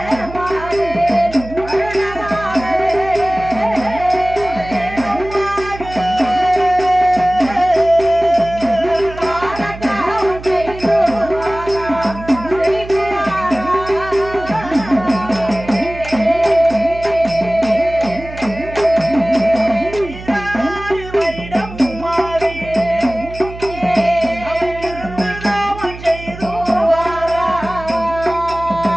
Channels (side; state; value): right; noise; hum, 13 dB below the sound